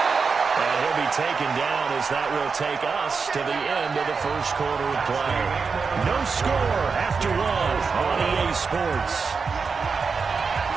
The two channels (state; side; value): quieter; left; 5.1 dB